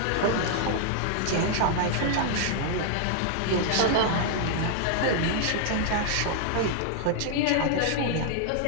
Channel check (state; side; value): different; both; correlation -0.01